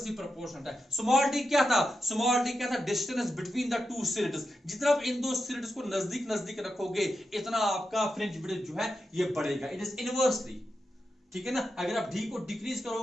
प्रोपोर्शनल है। स्मॉल डी क्या था? Distance between the two slits. जितना आप इन दो सिलेटस को नजदीक नजदीक रखोगे इतना आपका फ्रिंज विड्थ जो है ये बढ़ेगा, इट इज इनवर्सली। ठीक है ना? अगर आप d को डिक्रीज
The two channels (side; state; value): both; normal; correlation 0.88